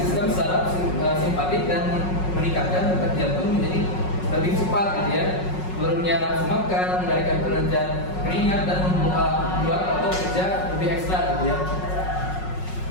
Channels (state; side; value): late; right; 5.4 ms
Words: saraf simpatik dan meningkatkan detak jantung menjadi lebih cepat gitu ya. Turunnya nafsu makan, mengendalikan kerja keringat dan membuat otot kerja lebih ekstra gitu ya.